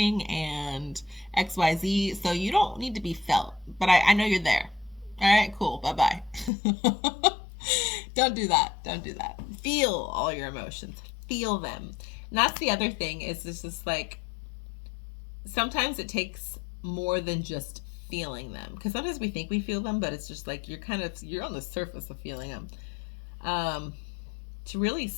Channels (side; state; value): right; drops out; at 6.5 s